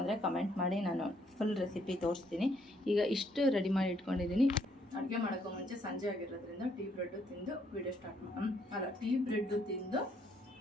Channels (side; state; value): both; normal; correlation 0.70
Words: ಕಮೆಂಟ್ ಮಾಡಿ, ನಾನು ಫುಲ್ ರೆಸಿಪಿ ತೋರಿಸ್ತೀನಿ. ಈಗ ಇಷ್ಟು ರೆಡಿ ಮಾಡಿ ಇಟ್ಕೊಂಡಿದ್ದೀನಿ. ಅಡುಗೆ ಮಾಡೋಕ್ಕೂ ಮುಂಚೆ ಸಂಜೆ ಆಗಿರೋದ್ರಿಂದ ಟೀ ಬ್ರೆಡ್ಡು ತಿಂದು ವಿಡಿಯೋ ಟೀ ಬ್ರೆಡ್ಡು ತಿಂದು